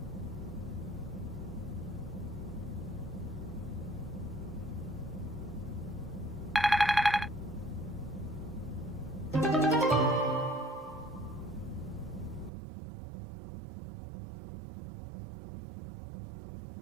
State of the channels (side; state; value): left; drops out; at 12.5 s